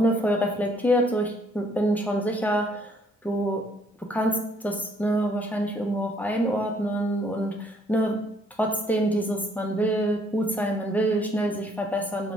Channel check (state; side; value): normal; both; correlation 0.65